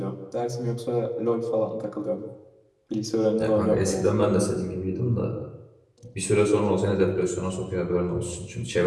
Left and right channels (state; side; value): identical; both; correlation 1.00